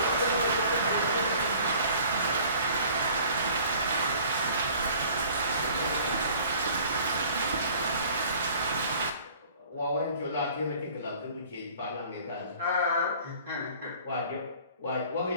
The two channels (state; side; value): inverted; both; correlation -0.50